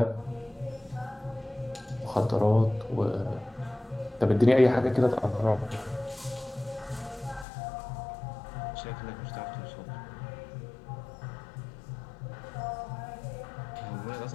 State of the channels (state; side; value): drops out; right; at 7.5 s